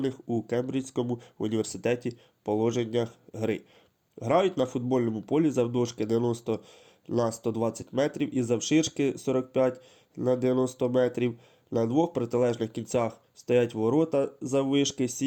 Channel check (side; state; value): both; identical; correlation 1.00